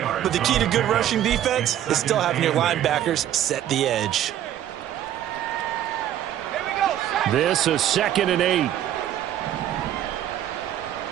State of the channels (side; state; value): left; quieter; 11.5 dB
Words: but the key to good rushing defense is still having your linebackers set the edge. Here we go. This is 2nd and 8.